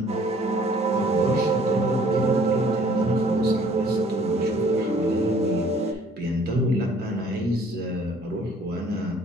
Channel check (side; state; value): both; normal; correlation 0.57